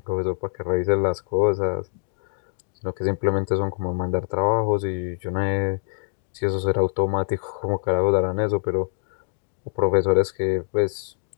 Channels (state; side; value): silent; right; digital silence